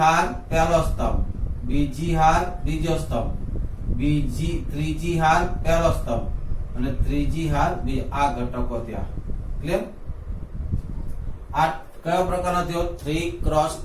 હાર પહેલો સ્તંભ, બીજી હાર બીજો સ્તંભ, ત્રીજી હાર પહેલો સ્તંભ અને ત્રીજી હાર બીજો. આ ઘટકો ત્યાં ક્લિયર? આ કયો પ્રકારનો થયો?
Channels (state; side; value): identical; both; correlation 1.00